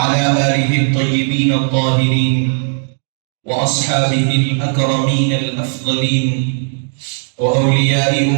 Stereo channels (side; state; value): left; silent; 61 dB below the other